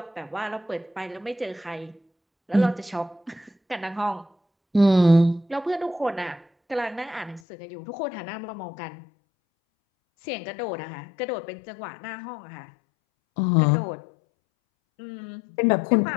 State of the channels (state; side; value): drops out; right; at 7.4 s